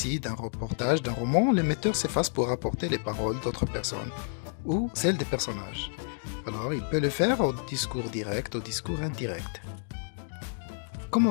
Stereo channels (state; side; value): silent; right; digital silence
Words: d'un reportage, d'un roman, l'émetteur s'efface pour rapporter les paroles d'autres personnes ou celles des personnages. Alors il peut le faire au discours direct, au discours indirect.